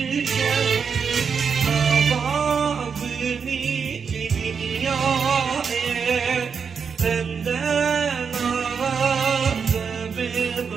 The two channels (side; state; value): left; quieter; 6.2 dB